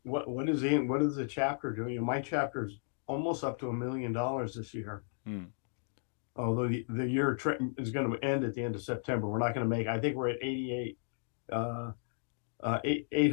What is the chapter doing? My chapter's almost up to $1 million this year. Although the year is going to end at the end of September. We're not going to make. I think we're at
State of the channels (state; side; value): silent; right; digital silence